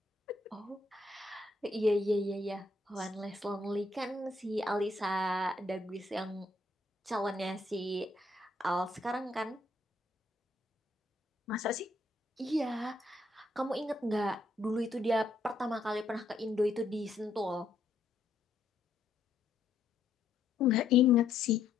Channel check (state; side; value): quieter; right; 3.3 dB